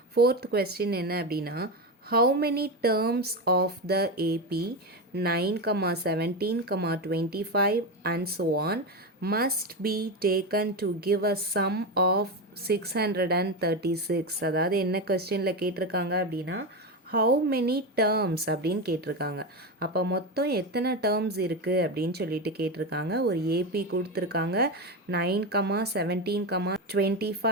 Fourth question என்ன அப்படின்னா, how many terms of the AP 9, 17, 25 and so on must be taken to give a sum of 636? அதாவது என்ன questionல கேட்டிருக்காங்க அப்படின்னா, how many terms அப்படின்னு கேட்டிருக்காங்க. அப்போ மொத்தம் எத்தனை டேர்ம்ஸ் இருக்குது அப்படின்னு சொல்லிட்டு கேட்டிருக்காங்க. ஒரு ஏபி கொடுத்துருக்காங்க. 9, 17,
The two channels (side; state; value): both; normal; correlation 0.16